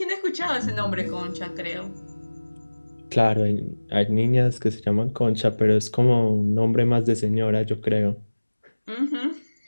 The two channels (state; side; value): inverted; both; correlation -1.00